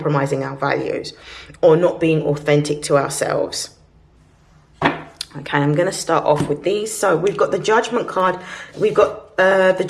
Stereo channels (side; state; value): both; identical; correlation 1.00